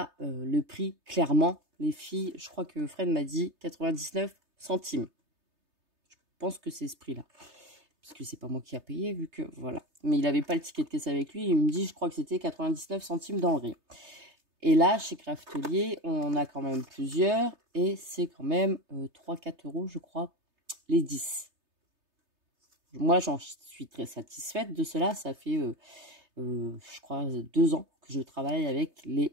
le prix, clairement, les filles, je crois que Fred m'a dit 99 centimes. Je pense que c'est ce prix-là. Parce que c'est pas moi qui a payé, vu que, voilà. Mais il n'avait pas le ticket de caisse avec lui. Il me dit, je crois que c'était 99 centimes dans le rayon. Et là, chez Craftelier, on en a quand même plusieurs. Et c'est quand même 3-4 euros, je crois, les 10. Moi, j'en suis très satisfaite de cela. Ça fait... je crois 2 ans que je travaille avec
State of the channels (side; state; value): left; late; 3.3 ms